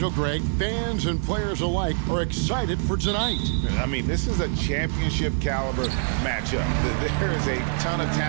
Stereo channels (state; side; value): silent; left; 62 dB below the other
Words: Greg. Fans and players alike are excited for tonight. I mean, this is a championship caliber matchup. There is a ton of